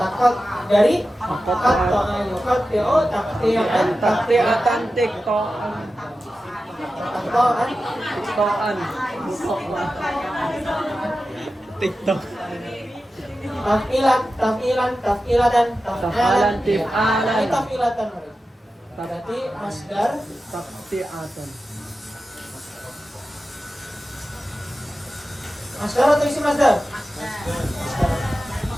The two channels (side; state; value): both; normal; correlation 0.93